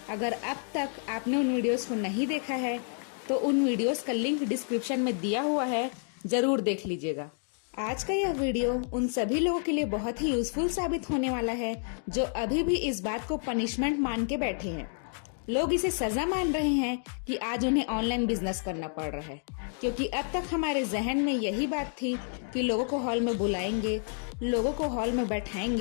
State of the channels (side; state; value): right; silent; 58 dB below the other